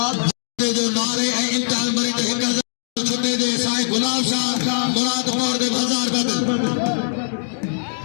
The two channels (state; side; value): silent; right; digital silence